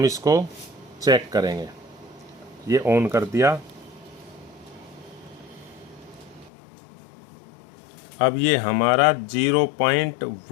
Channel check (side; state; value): right; drops out; at 6.5 s